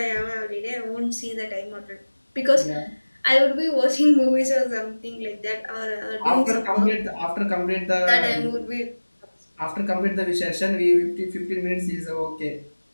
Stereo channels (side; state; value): both; inverted; correlation -1.00